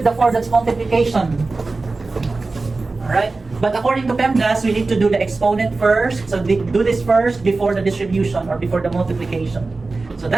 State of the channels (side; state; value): left; quieter; 3.6 dB